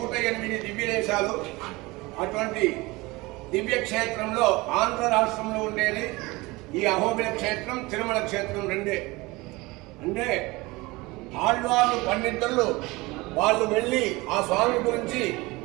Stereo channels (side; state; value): left; quieter; 22.5 dB